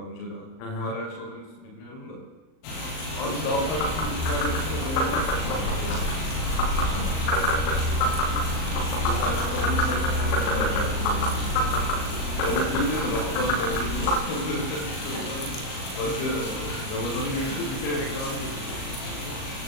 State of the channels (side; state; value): right; late; 38 ms